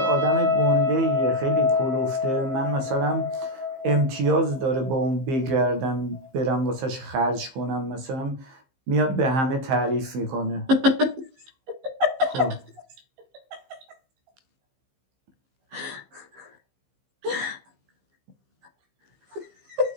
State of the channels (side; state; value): left; late; 15 ms